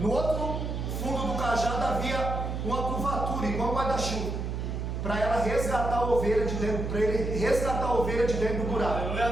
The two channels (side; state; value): right; noise; hum, 3 dB below the sound